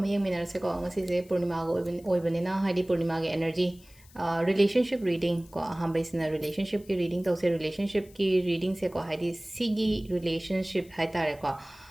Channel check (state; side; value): noise; left; hiss, 26 dB below the sound